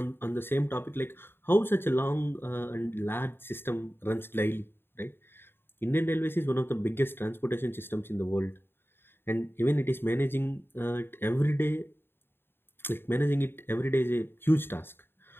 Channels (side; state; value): right; late; 0.11 ms